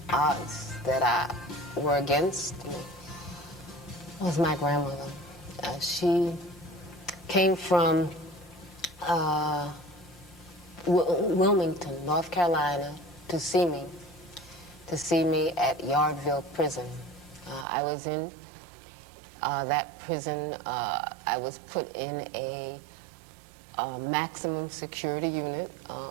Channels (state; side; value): drops out; left; at 17.7 s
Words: odds that were against me. Was my grandmother. She came from Wilmington, North Carolina, to see me at Yardville Prison. I was in that prison. I was put in a maximum security unit,